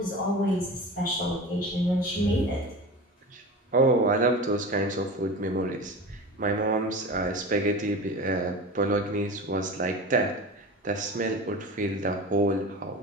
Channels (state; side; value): normal; both; correlation 0.31